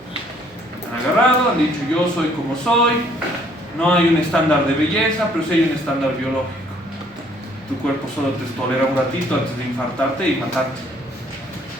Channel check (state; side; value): normal; both; correlation 0.62